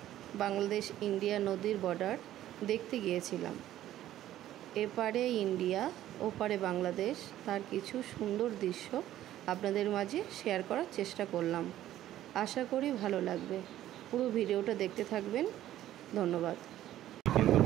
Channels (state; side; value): quieter; left; 13.1 dB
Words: বাংলাদেশ ইন্ডিয়া নদীর বর্ডার দেখতে গিয়েছিলাম। এপারে ইন্ডিয়া, ওপারে বাংলাদেশ, তার কিছু সুন্দর দৃশ্য আপনাদের মাঝে শেয়ার করার চেষ্টা করলাম। আশা করি ভালো লাগবে। পুরো ভিডিওটা দেখতে থাকবেন। ধন্যবাদ।